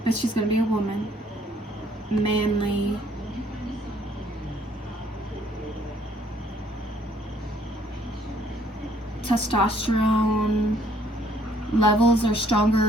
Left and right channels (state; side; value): normal; both; correlation 0.63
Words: but she's going to be a woman, manly, testosterone levels are stronger,